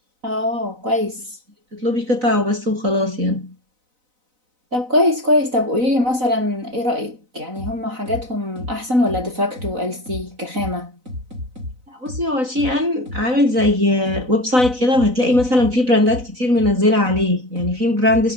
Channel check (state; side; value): late; left; 4.0 ms